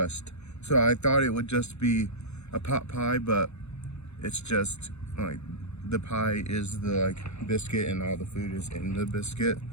So I thought it would just be a pot pie, but it's just like the pie is the biscuit and all the food is in the biscuit.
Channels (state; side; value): late; right; 0.81 ms